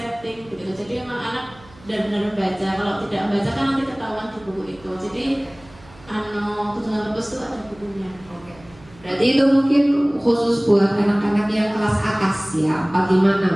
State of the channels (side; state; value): right; noise; hum, 24 dB below the sound